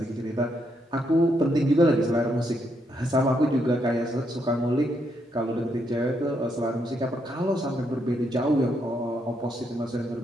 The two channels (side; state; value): both; normal; correlation 0.77